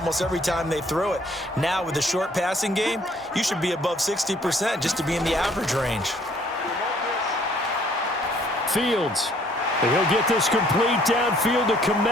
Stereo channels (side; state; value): both; normal; correlation 0.61